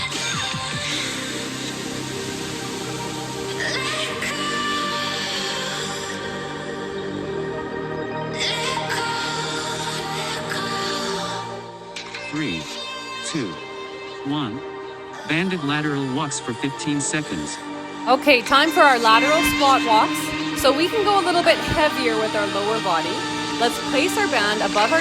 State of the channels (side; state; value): both; identical; correlation 1.00